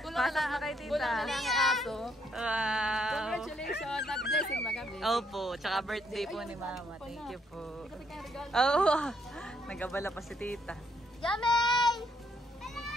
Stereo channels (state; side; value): normal; both; correlation 0.72